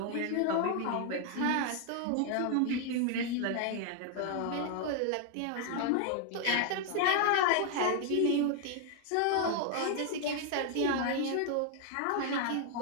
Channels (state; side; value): different; both; correlation 0.00